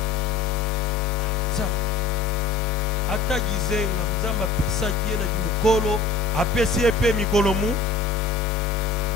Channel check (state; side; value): quieter; right; 4.4 dB